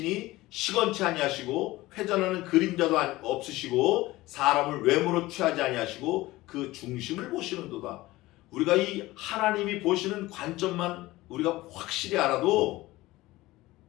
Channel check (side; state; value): right; quieter; 18.6 dB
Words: 시건치 아니하시고 회전하는 그림자도 없으시고 사람을 외모로 취하지 아니하시고 그 중심을 보시는도다. 우리가 이 하나님이 보시는 관점만 우리가 확실히 알아도